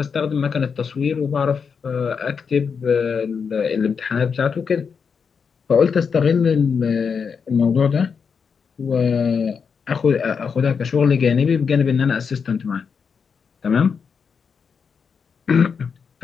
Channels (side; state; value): right; quieter; 6.1 dB